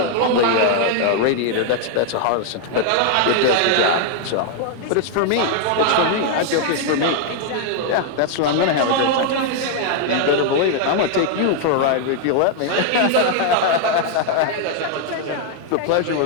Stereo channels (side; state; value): both; different; correlation 0.00